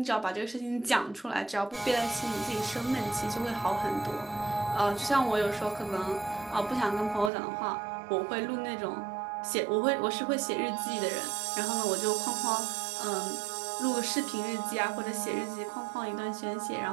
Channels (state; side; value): drops out; left; at 7.3 s